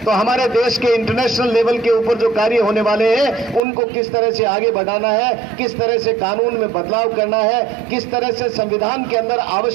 तो हमारे देश के इंटरनेशनल लेवल के ऊपर जो कार्य होने वाले हैं उनको किस तरह से आगे बढ़ाना है, किस तरह से कानून में बदलाव करना है, किस तरह से संविधान के अंदर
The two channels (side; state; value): left; drops out; at 3.6 s